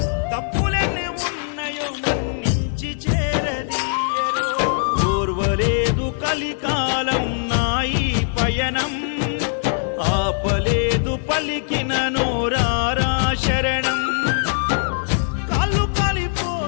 తప్పులెన్ని ఉన్నాయో మన్నించి చేరదీయరో ఓర్వలేదు కలికాలం నాయి పయనం ఆపలేదు పలికిన నోరారా శరణం కాళ్ళు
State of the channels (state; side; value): silent; right; 58 dB below the other